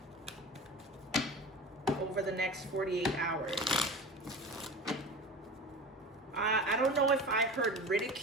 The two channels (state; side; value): normal; both; correlation 0.33